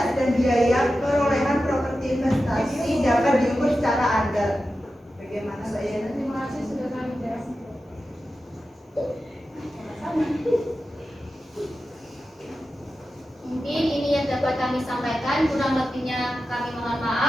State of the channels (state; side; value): normal; both; correlation 0.92